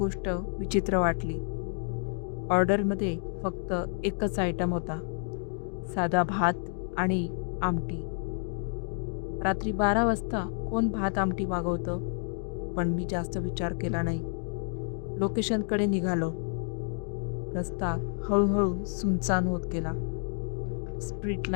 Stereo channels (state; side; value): silent; right; 58 dB below the other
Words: विचित्र वाटली. ऑर्डरमध्ये फक्त एकच आयटम होता, साधा भात आणि आमटी. रात्री 12 वाजता कोण भात आमटी मागवतं? पण मी जास्त विचार केला नाही. लोकेशनकडे निघालो. रस्ता हळूहळू सुनसान होत गेला. स्ट्रीट